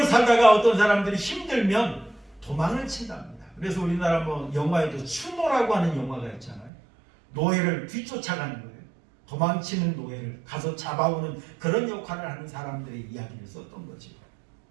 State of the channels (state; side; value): drops out; left; at 6.7 s